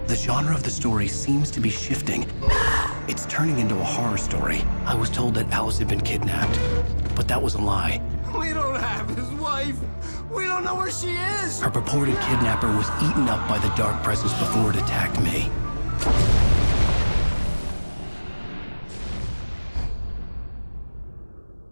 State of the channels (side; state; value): both; inverted; correlation -1.00